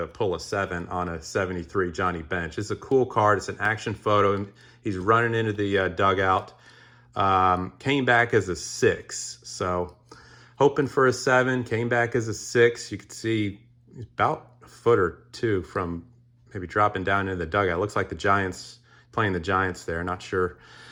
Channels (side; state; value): both; identical; correlation 1.00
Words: pull a 7 on a 73 Johnny Bench. It's a cool card. It's an action photo. He's running into the dugout. Came back as a 6. So hoping for a 7. Came back as a 6. You could see he's about a foot or 2 from maybe dropping down into the dugout. It looks like the Giants, playing the Giants there. Not sure.